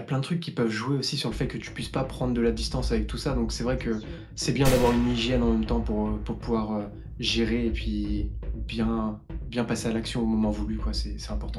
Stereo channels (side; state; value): both; identical; correlation 1.00